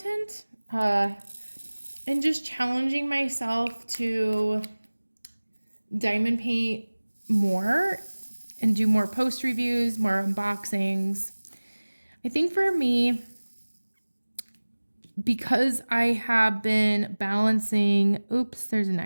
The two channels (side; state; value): both; inverted; correlation -1.00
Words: and just challenging myself to diamond paint more and do more post reviews, more unboxings. I think for me, because I have been balancing, oops, there's an